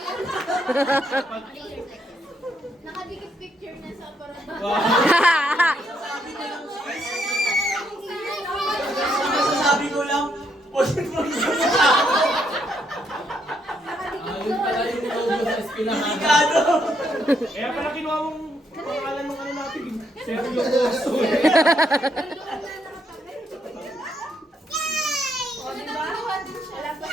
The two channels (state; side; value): normal; both; correlation 0.75